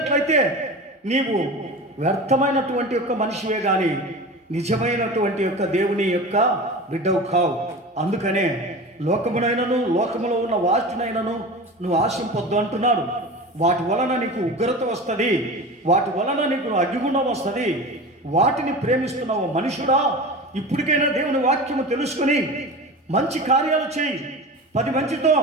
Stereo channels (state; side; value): normal; both; correlation 0.31